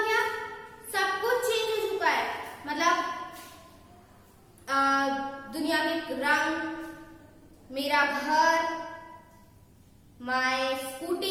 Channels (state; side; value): identical; both; correlation 1.00